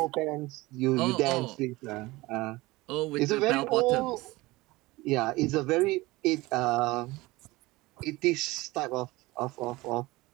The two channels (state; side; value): quieter; left; 20.8 dB